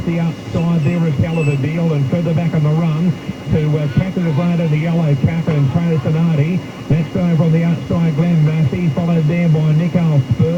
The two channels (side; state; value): both; identical; correlation 1.00